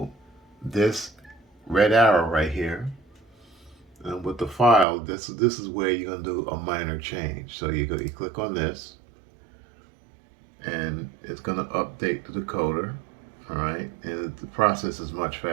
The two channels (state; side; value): drops out; left; at 4.9 s